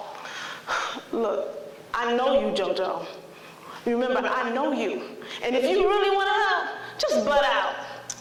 Look, I know you, JoJo. Remember, I know you. And if you really want to help, just butt out.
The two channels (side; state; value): both; identical; correlation 1.00